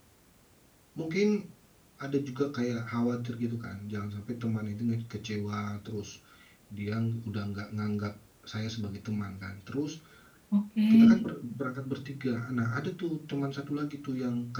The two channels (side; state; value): both; identical; correlation 1.00